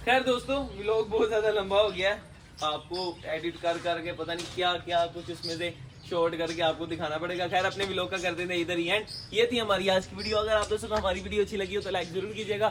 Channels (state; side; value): identical; both; correlation 1.00